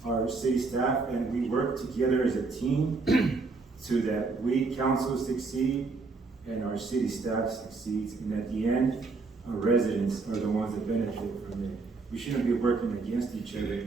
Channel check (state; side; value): quieter; left; 4.0 dB